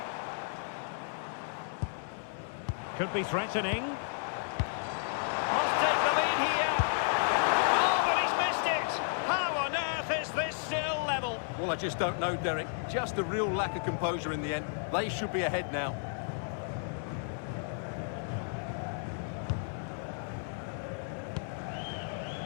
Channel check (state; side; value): silent; right; 56 dB below the other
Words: Could be threatening. Must take the lead here. Oh, but he's missed it. How on earth is this still level? Well, I just don't know, Derek. Just a real lack of composure in the end. They should be ahead now.